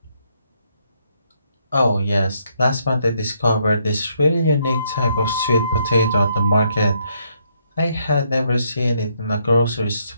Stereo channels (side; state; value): both; inverted; correlation -0.74